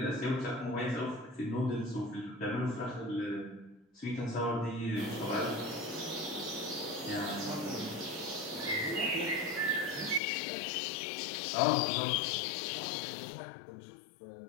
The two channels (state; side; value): drops out; right; at 10.2 s